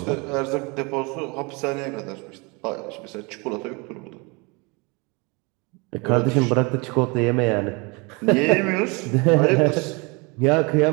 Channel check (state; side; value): quieter; left; 29.0 dB